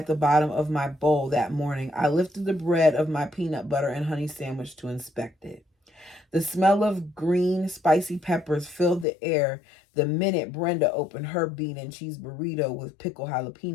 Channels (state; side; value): drops out; right; at 9.1 s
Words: the bottom of my bowl that morning, I lifted the bread of my peanut butter and honey sandwich to inspect it. The smell of green, spicy peppers filled the air the minute Brenda opened her bean and cheese burrito with pickled